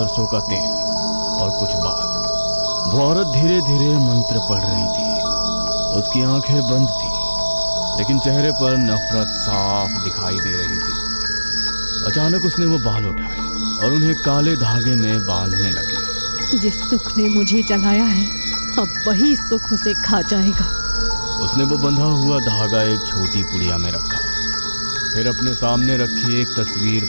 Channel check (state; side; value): inverted; both; correlation -1.00